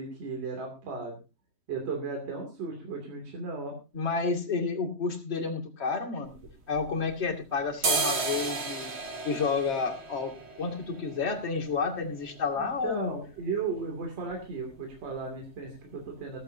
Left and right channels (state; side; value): late; left; 3.1 ms